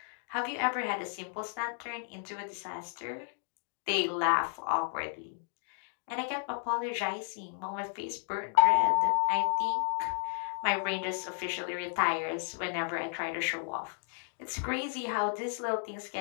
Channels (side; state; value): right; silent; 56 dB below the other